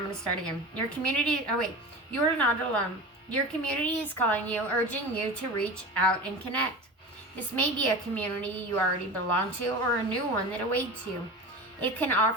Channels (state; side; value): normal; both; correlation 0.31